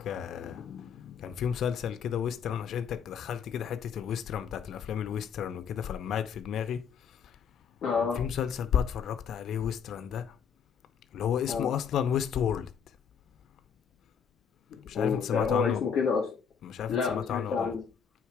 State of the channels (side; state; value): right; quieter; 7.2 dB